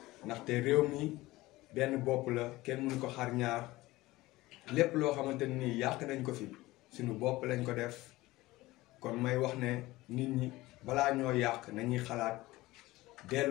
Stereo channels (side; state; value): right; quieter; 18.9 dB